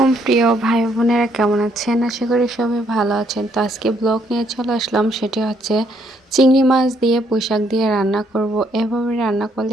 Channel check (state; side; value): normal; both; correlation 0.70